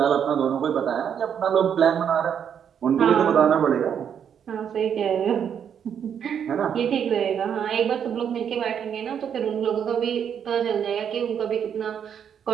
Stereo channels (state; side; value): quieter; left; 8.2 dB